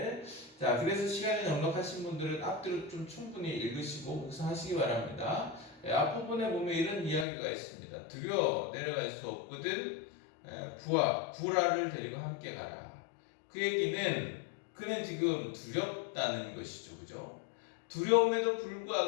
자, 그래서 시간이 넉넉하신 분들은 앞뒤로 좀 충분히 읽으시고 묵상하시기 바랍니다. 앞부분에 보면 이런 이야기가 있습니다. 두려워 내려갈 수 없거든 구라를 데리고 함께 가라. 그 얘기는 그는 지금 두렵다는 것이죠, 그죠? 두려움에도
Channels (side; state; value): right; drops out; at 7.2 s